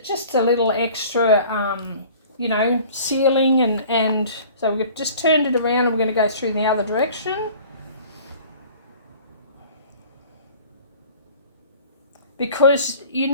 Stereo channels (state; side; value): inverted; both; correlation -0.47